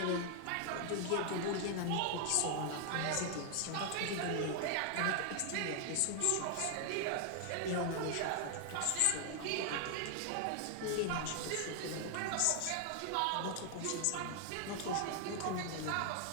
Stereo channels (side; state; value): both; different; correlation 0.00